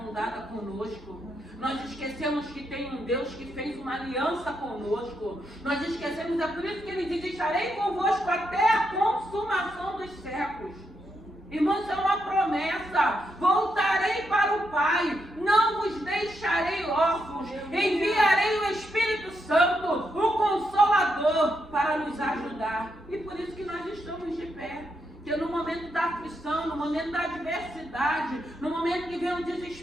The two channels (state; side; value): normal; both; correlation 0.81